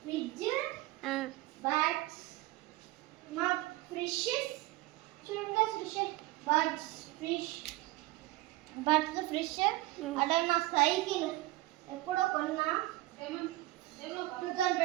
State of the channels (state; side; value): quieter; left; 18.3 dB